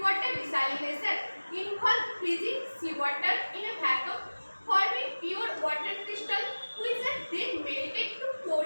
desalination involve freezing seawater in a vacuum, forming pure water crystal, which are then melted to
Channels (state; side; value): inverted; both; correlation -1.00